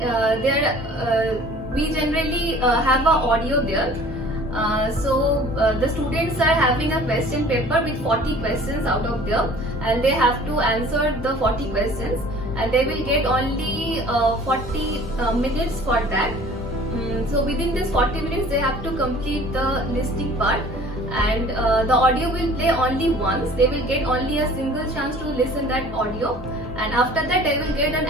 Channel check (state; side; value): normal; both; correlation 0.48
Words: we generally have a audio there. The students are having a question paper with 40 questions out of there, and they have to answer the 40 questions, and they will get only 40 minutes for that. So within this 40 minutes they have to complete the listening part, and the audio will play only once. They will get only a single chance to listen that audio, and after that they will get an